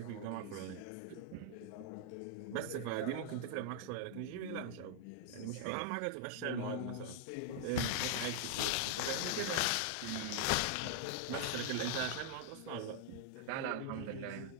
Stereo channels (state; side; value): different; both; correlation 0.00